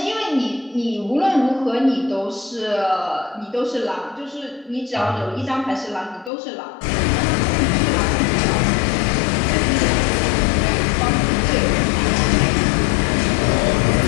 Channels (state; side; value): drops out; right; at 6.3 s